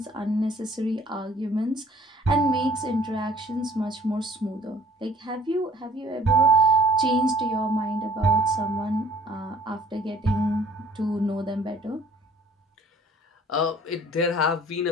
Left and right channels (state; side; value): normal; both; correlation 0.54